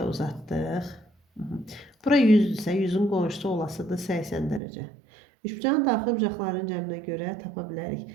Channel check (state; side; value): drops out; left; at 4.6 s